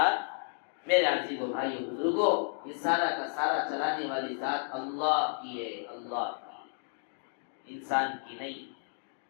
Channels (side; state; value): right; silent; digital silence